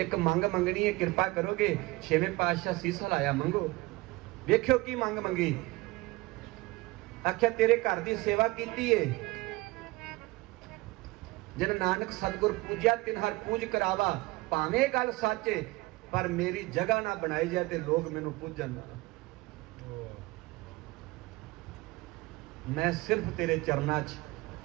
मंग मंगनी है, कृपा करोगे? छेवें पातशाह सीस हिलाया, मंगो। वेख्यो की मंग मंगी। आख्या तेरे घर की सेवा की है, जिन नानक सतगुर पूजा तिन हर पूज करावा। भावें गल सच है, पर मेरी जगह ना बनाई जाए तो लोग मैनू पूजन। मैं सिर्फ तेरे चरना च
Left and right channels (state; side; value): quieter; left; 21.9 dB